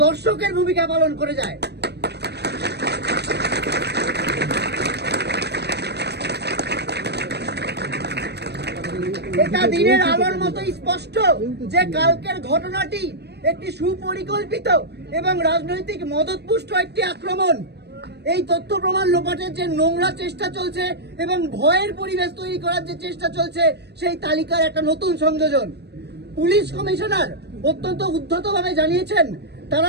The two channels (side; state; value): left; late; 0.49 ms